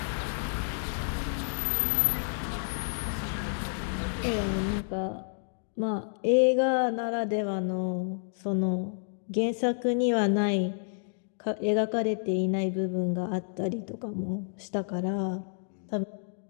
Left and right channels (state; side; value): silent; right; digital silence